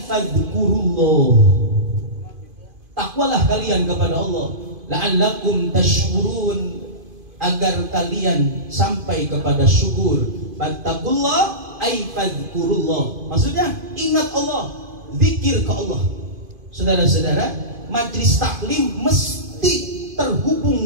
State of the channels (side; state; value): left; late; 2.5 ms